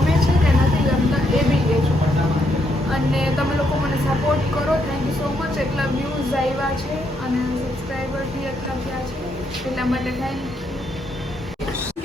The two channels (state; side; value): normal; both; correlation 0.77